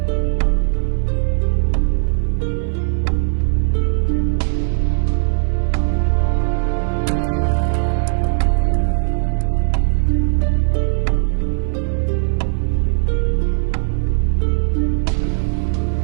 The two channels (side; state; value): left; silent; 58 dB below the other